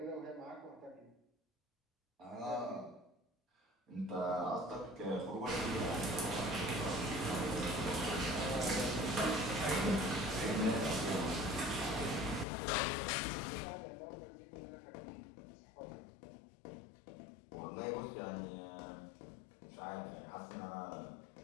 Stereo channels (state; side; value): drops out; right; at 12.5 s